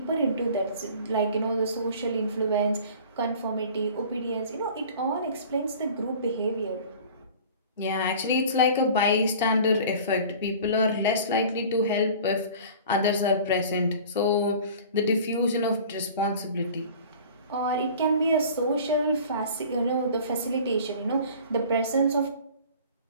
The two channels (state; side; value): inverted; both; correlation -0.44